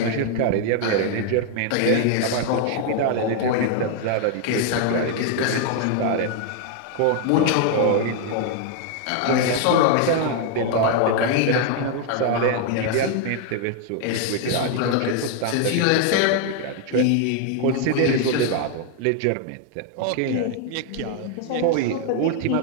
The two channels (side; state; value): both; different; correlation 0.00